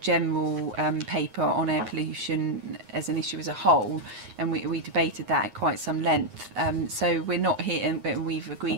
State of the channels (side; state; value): left; late; 9.7 ms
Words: general paper on air pollution as an issue as a whole, and we debated that at quite some length. So we're not here, and we've